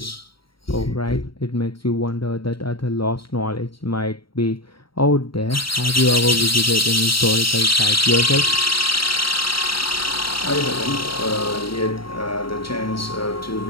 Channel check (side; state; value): right; late; 0.74 ms